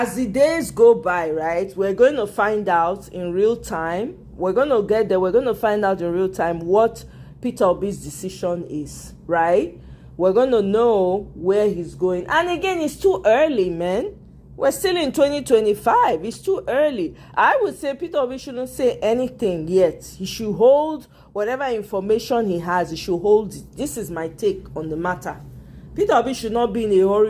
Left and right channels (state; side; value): identical; both; correlation 1.00